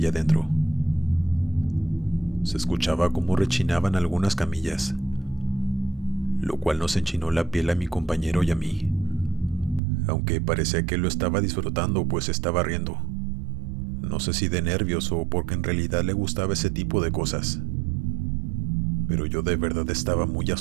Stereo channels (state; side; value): drops out; left; at 9.8 s